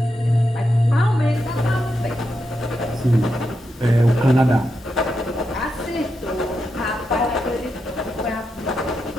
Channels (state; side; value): normal; both; correlation 0.85